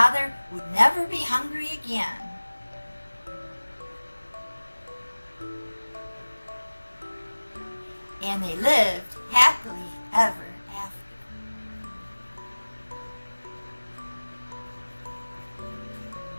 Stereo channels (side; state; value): both; inverted; correlation -1.00